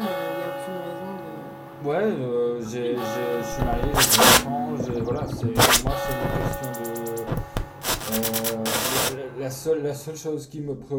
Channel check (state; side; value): identical; both; correlation 1.00